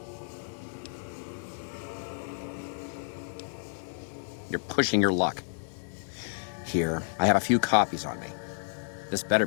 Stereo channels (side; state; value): right; silent; digital silence